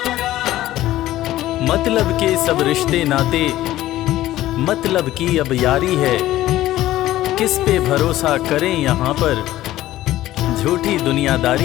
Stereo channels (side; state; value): right; quieter; 15.0 dB